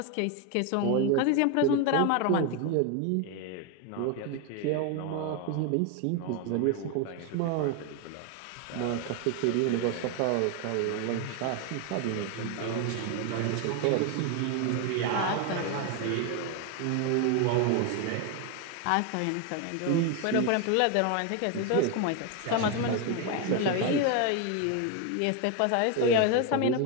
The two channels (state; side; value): different; both; correlation 0.01